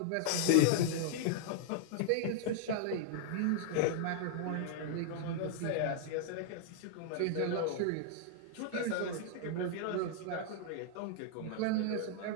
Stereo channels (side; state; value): both; different; correlation -0.01